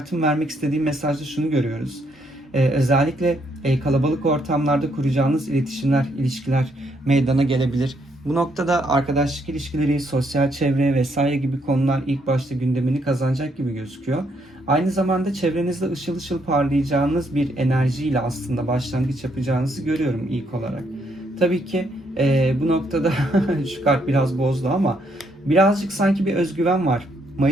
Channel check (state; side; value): normal; both; correlation 0.73